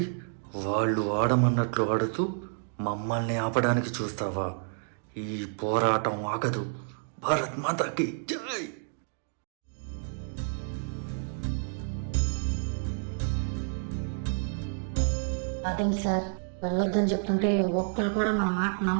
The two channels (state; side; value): silent; left; digital silence